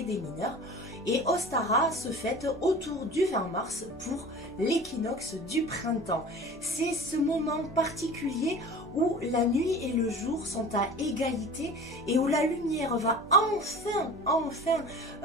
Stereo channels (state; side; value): normal; both; correlation 0.39